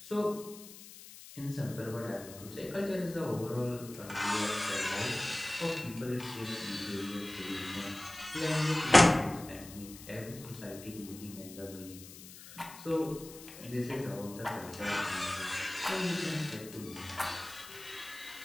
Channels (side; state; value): left; noise; hiss, 16 dB below the sound